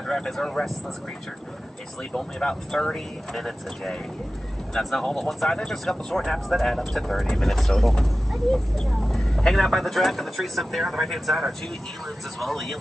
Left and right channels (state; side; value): normal; both; correlation 0.95